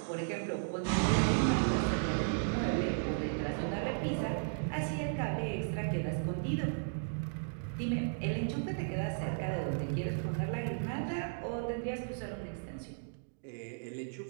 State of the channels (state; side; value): silent; left; digital silence